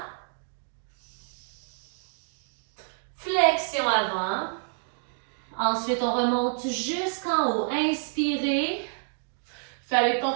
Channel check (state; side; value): silent; left; digital silence